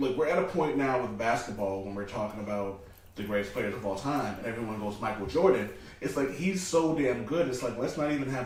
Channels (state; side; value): identical; both; correlation 1.00